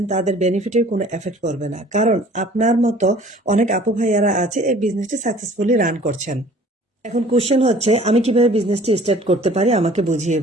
তাদের বেনিফিটের কোনো এফেক্ট করবে না, কারণ আপনার মতো অনেক আপু ভাইয়ারা আছে এই বিজনেসটি সাকসেসফুলি রান করছেন। এখন কোশ্চেন হচ্ছে, আমি কিভাবে বিজনেসটি স্টার্ট করতে পারি, আমাকে বুঝিয়ে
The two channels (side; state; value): both; normal; correlation 0.51